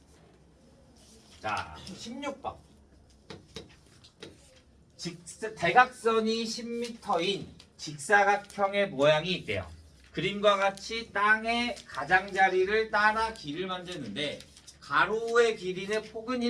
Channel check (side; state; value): both; identical; correlation 1.00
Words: 자, 16번. 대각선이 10m인 직사각형의 모양이 있대요. 그림과 같이 땅의 가장자리를 따라 길을 만드는데 가로의 길이는 폭은